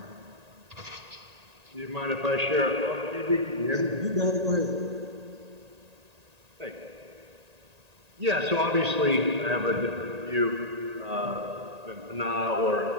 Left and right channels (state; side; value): late; left; 1.8 ms